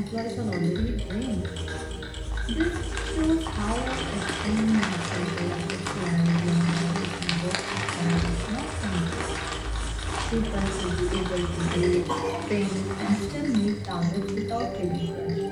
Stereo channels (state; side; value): identical; both; correlation 1.00